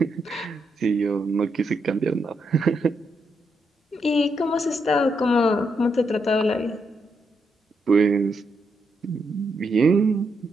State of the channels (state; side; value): normal; both; correlation 0.80